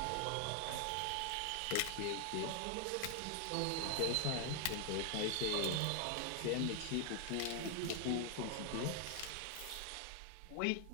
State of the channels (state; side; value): different; both; correlation 0.00